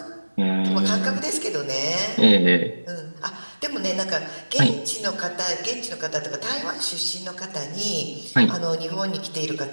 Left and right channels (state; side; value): inverted; both; correlation -1.00